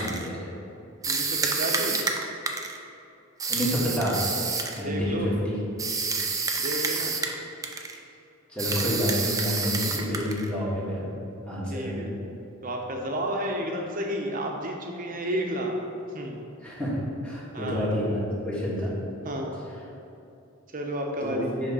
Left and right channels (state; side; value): normal; both; correlation 0.31